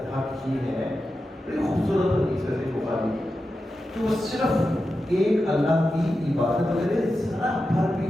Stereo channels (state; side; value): normal; both; correlation 0.91